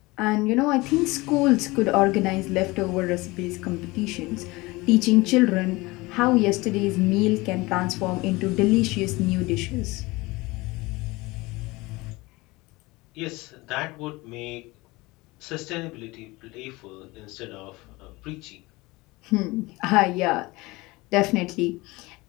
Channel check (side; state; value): right; quieter; 22.2 dB